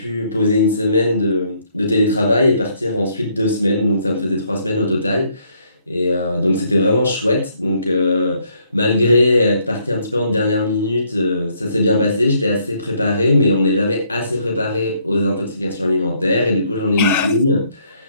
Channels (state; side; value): inverted; both; correlation -0.69